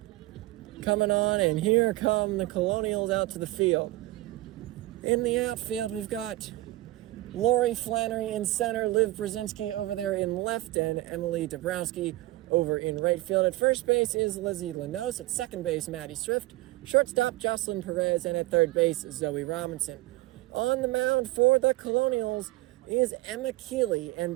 coming on, and here come the Colonials out to the field. In the outfield, we've got Lori Flannery in center, Liv Brzezinski over there in left, and Emily Dabrowski over in right field. At first base is Lizzie Lanos. At second base, Maddie Swift. Shortstop, Jocelyn Perez. And at third base, Zoe Robinson. On the mound for the Colonials is Emma Keeley, and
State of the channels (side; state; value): left; quieter; 18.4 dB